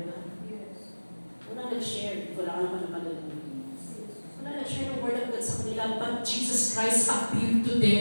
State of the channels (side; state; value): both; inverted; correlation -1.00